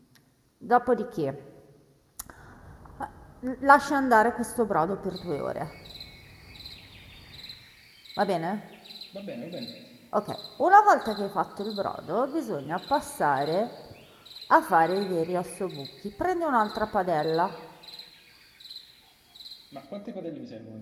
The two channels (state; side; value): identical; both; correlation 1.00